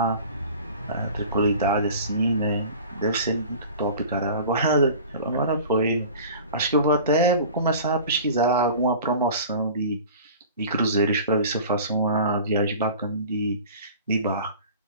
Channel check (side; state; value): both; inverted; correlation -0.41